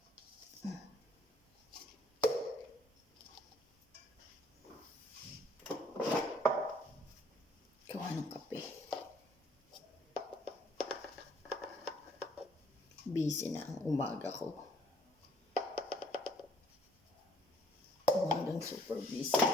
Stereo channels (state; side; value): normal; both; correlation 0.62